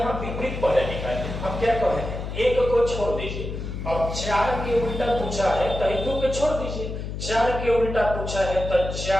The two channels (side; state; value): left; noise; hum, 6 dB below the sound